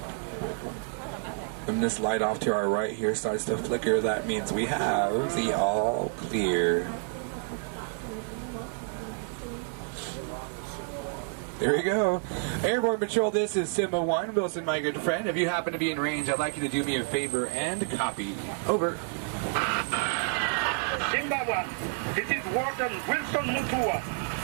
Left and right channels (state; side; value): silent; left; 58 dB below the other